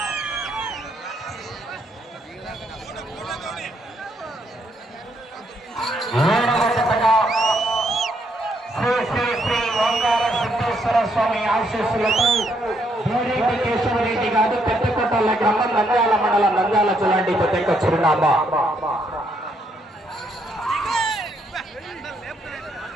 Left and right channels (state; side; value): normal; both; correlation 0.74